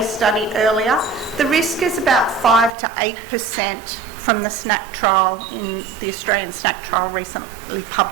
study earlier, the risk is about 5 to 8% from the SNAP trial in the Australian SNAP trial recently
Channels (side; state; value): left; drops out; at 2.7 s